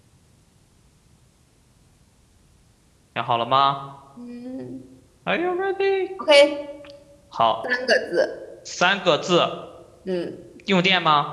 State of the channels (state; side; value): identical; both; correlation 1.00